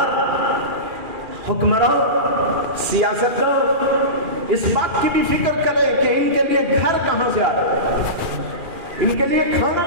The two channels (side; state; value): left; late; 2.4 ms